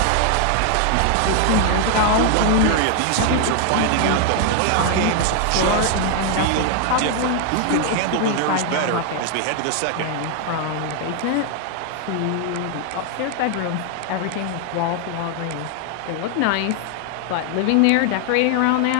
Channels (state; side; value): different; both; correlation 0.00